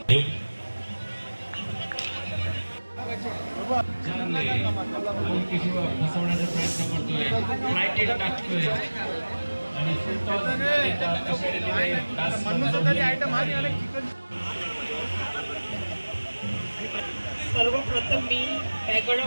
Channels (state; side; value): inverted; both; correlation -1.00